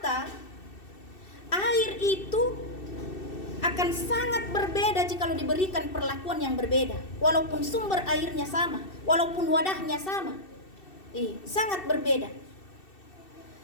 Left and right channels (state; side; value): late; right; 2.6 ms